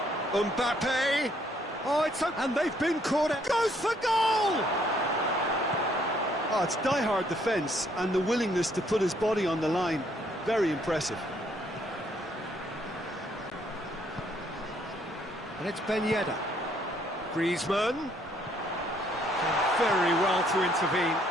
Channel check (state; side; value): normal; both; correlation 0.67